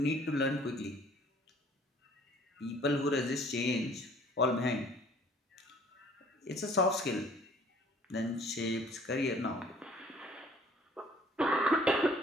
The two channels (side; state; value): both; normal; correlation 0.55